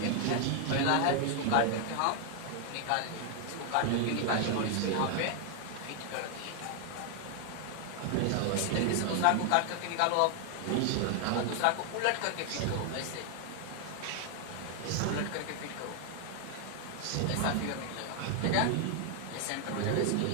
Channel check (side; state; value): both; different; correlation 0.00